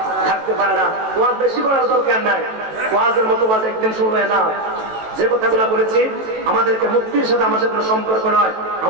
থাকতে পারে না। ওয়াজ বেশি করার দরকার নাই, ওয়াজের মতো ওয়াজ একদিন শুনবে না। যে কথাগুলো বলেছি, আমাদেরকে মুক্তির সাথে আমাদের কোনো সম্পর্ক নয়,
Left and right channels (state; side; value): late; left; 18 ms